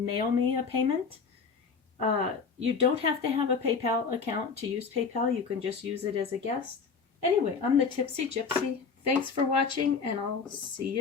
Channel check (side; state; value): right; quieter; 5.3 dB